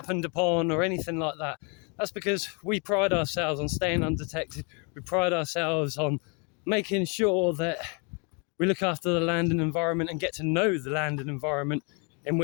upon or anything like that. That's because we pride ourselves on staying undetected. We pride ourselves on making sure that we look after the land and environment and get to know the land and environment in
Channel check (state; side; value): quieter; right; 34.7 dB